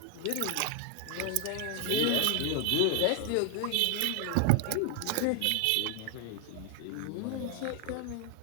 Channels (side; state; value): both; different; correlation 0.00